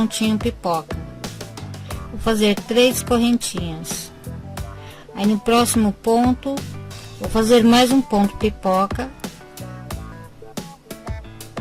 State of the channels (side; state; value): both; identical; correlation 1.00